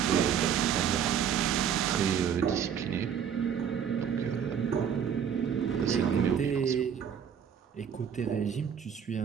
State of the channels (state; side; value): quieter; left; 8.0 dB